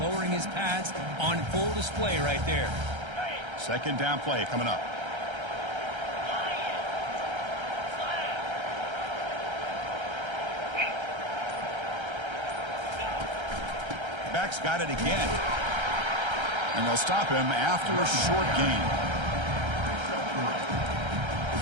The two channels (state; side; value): late; left; 1.3 ms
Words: lowering his pads on full display right there. 2nd down play coming up. Back's got it again. And they'll stop him after a short gain.